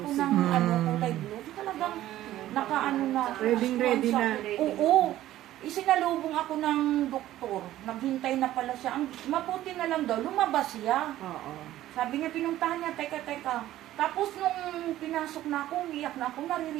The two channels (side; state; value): left; quieter; 14.0 dB